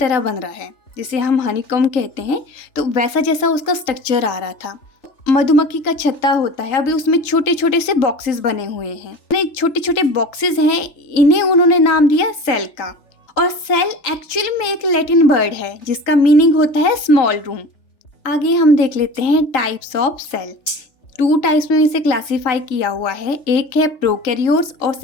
बन रहा है, जिसे हम हनीकॉम्ब कहते हैं। तो वैसा जैसा उसका स्ट्रक्चर आ रहा था। मधुमक्खी का छत्ता होता है, अभी उसमें छोटे छोटे से बॉक्सेस बने हुए हैं। छोटे छोटे बॉक्सेस हैं, इन्हें उन्होंने नाम दिया सेल का। और सेल एक्चुअली में एक लैटिन वर्ड है जिसका मीनिंग होता है स्मॉल रूम। आगे हम देख लेते हैं टाइप्स ऑफ सेल। 2 टाइप्स में इसे क्लासिफाई किया हुआ है। एक है प्रोकैरियोट्स और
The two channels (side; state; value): right; late; 3.4 ms